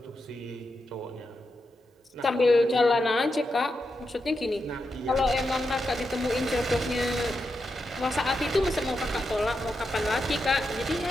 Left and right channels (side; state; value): both; normal; correlation 0.87